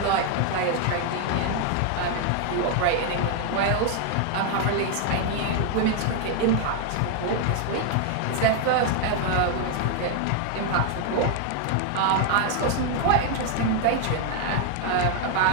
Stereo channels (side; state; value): both; different; correlation 0.00